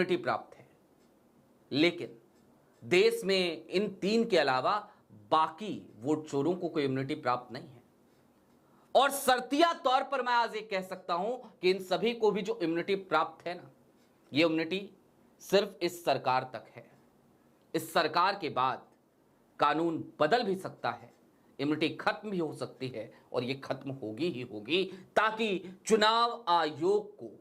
प्राप्त है, लेकिन देश में इन 3 के अलावा बाकी वोट चोरों को कोई इम्यूनिटी प्राप्त नहीं है। और शर्तिया तौर पर मैं आज ये कह सकता हूं कि इन सभी को भी जो इम्यूनिटी प्राप्त है ना, ये इम्यूनिटी सिर्फ इस सरकार तक है। इस सरकार के बाद कानून बदल भी सकता है, इम्यूनिटी खत्म भी हो सकती है, और ये खत्म होगी ही होगी, ताकि चुनाव आयोग को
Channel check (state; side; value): identical; both; correlation 1.00